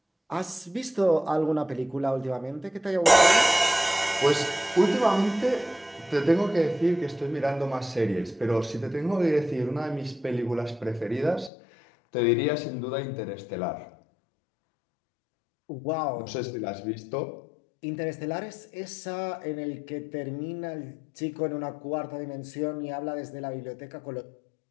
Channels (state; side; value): drops out; right; at 11.5 s